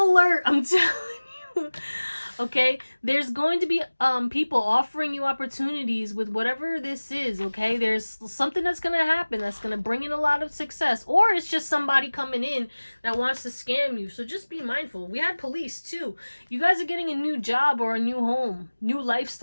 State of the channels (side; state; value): both; inverted; correlation -1.00